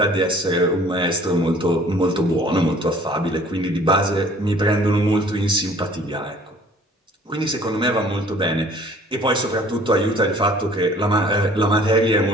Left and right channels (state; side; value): normal; both; correlation 0.53